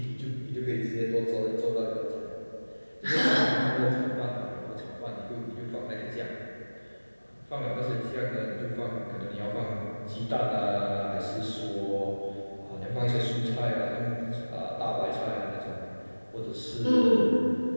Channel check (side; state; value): both; inverted; correlation -1.00